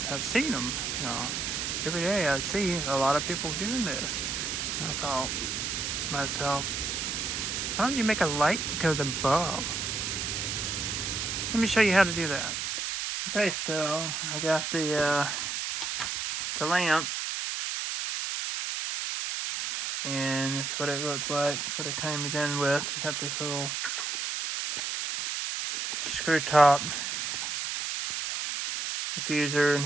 I've seen them, every day I see a lot of people doing this. And I thought to myself, why don't you make a light that goes above? Let me show you how to do that. Okay, so I got the lamp, and that's what it looks like. That's what it came in with. It got this little screw top diffuser and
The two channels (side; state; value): right; noise; hiss, 2 dB below the sound